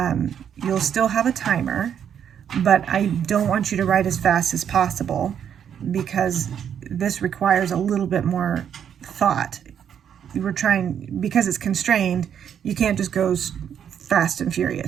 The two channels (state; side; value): quieter; left; 8.6 dB